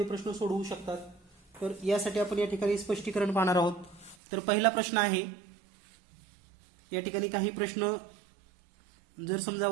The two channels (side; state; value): left; drops out; at 4.2 s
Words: प्रश्न सोडवू शकतात. तर यासाठी आपण या ठिकाणी स्पष्टीकरण पाहणार आहोत. तर पहिला प्रश्न आहे, या ठिकाणी काही प्रश्न जर समजा